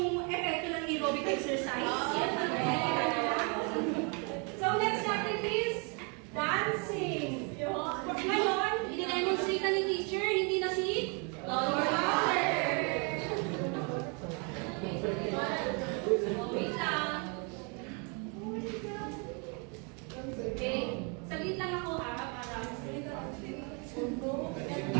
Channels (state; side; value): quieter; left; 35.2 dB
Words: epekto ng aerobic exercise. So, next natin is dancing. Ngayon, i-demonstrate na ni teacher, hindi na si Lower. Wait lang. Okay. Saglit lang ako ha, para